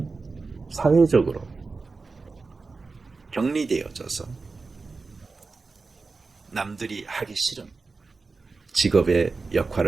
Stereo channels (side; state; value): left; quieter; 4.1 dB